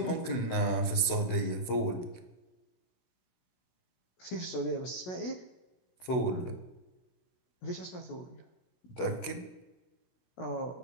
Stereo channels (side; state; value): right; late; 16 ms